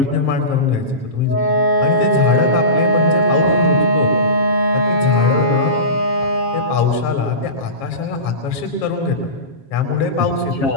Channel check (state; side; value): late; right; 7.3 ms